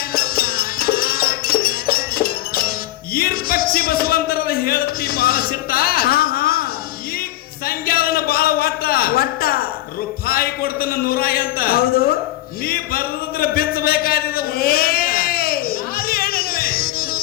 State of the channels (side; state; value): right; quieter; 15.6 dB